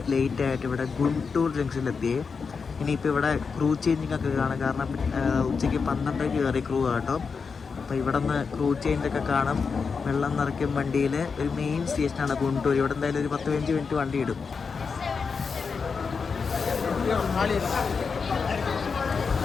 ലേറ്റ് ആയിട്ട് ഇവിടെ ഗുണ്ടൂർ ജംഗ്ഷനിലെത്തിയേ. ഇനിയിപ്പോൾ ഇവിടെ ക്രൂ ചേഞ്ചിങ് ഒക്കെ കാണാം. കാരണം ഉച്ചയ്ക്ക് 12 കയറി ക്രൂ കേട്ടോ. അപ്പോൾ ഇവിടെ നിന്ന് ക്രൂ ചേഞ്ചൊക്കെ കാണും. വെള്ളം നിറയ്ക്കും വണ്ടിയിൽ. ഒരു മെയിൻ സ്റ്റേഷനാണ് ഗുണ്ടൂർ. ഇവിടെ എന്തായാലും ഒരു 10-15 മിനിറ്റ് വണ്ടി ഇടും.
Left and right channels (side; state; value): right; quieter; 5.3 dB